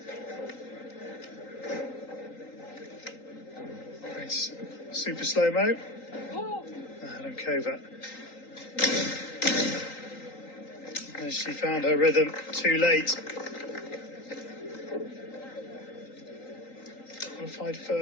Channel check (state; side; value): late; right; 3.9 ms